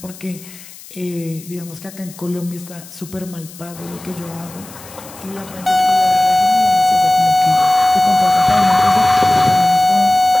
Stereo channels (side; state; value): left; noise; hiss, 19 dB below the sound